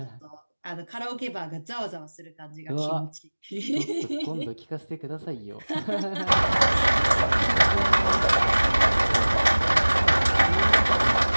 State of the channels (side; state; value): both; inverted; correlation -1.00